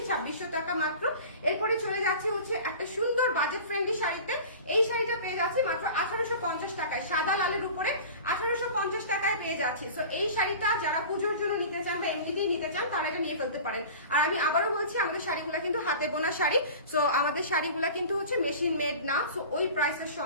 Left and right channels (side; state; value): both; inverted; correlation -0.38